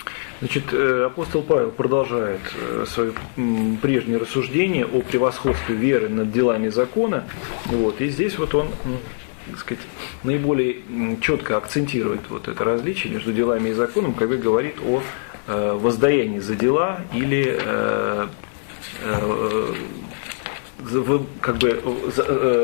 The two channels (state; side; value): silent; right; 58 dB below the other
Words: Значит, апостол Павел продолжает свое прежнее рассуждение о превосходстве веры над делами закона. Вот, и здесь вот он, так сказать, наиболее четко акцентирует вот это различие между делами и законом, когда говорит о воздаянии за дела или как бы